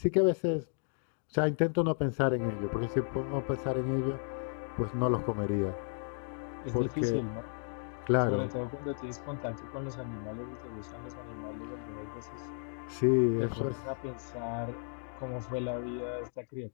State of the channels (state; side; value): silent; right; digital silence